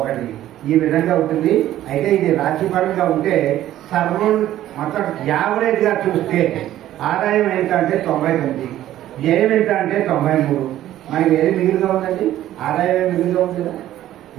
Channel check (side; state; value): left; quieter; 13.2 dB